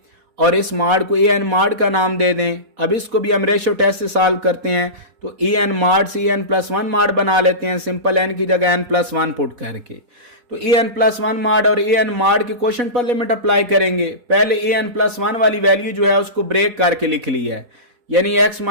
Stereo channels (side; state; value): left; late; 4.1 ms